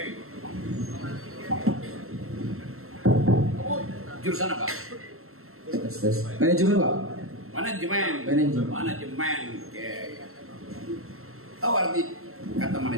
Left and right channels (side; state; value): left; late; 0.62 ms